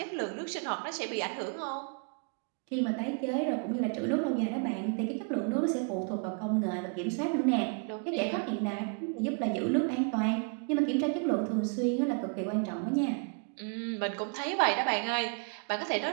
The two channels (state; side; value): quieter; left; 39.6 dB